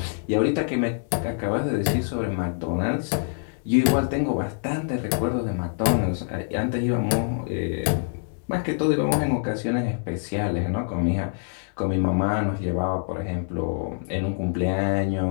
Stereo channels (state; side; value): silent; right; 61 dB below the other